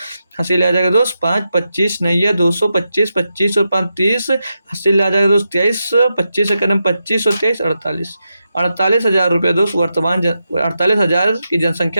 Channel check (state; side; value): inverted; both; correlation -0.87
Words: हासिल आ जाएगा दोस्त 5, 25 नहीं है 225, 25 और 5 30 हासिल आ जाएगा दोस्त 23, 25 से कदम 25 और 23 48,000 रुपये दोस्त वर्तमान 48,000 की